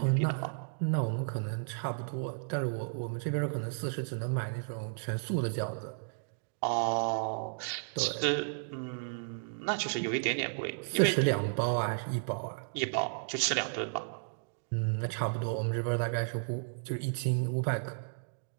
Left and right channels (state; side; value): silent; left; digital silence